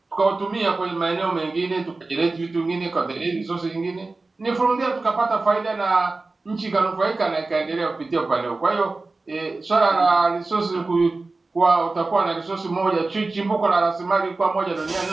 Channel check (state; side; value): quieter; left; 3.5 dB